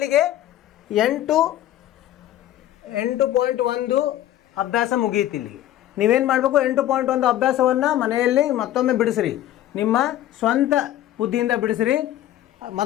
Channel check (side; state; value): right; quieter; 13.1 dB